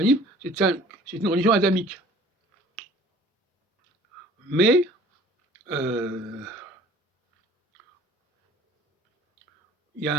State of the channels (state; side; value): normal; both; correlation 0.50